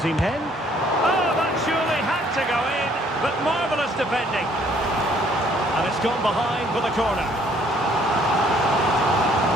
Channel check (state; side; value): normal; both; correlation 0.62